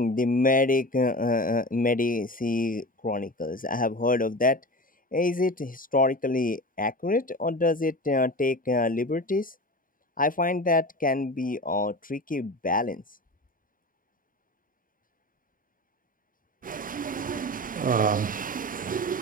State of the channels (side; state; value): both; normal; correlation 0.31